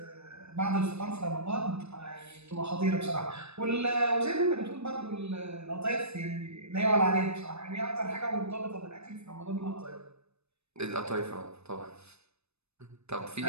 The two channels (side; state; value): left; late; 0.80 ms